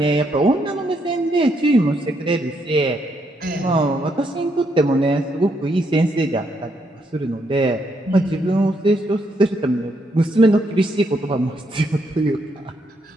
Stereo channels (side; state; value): both; normal; correlation 0.76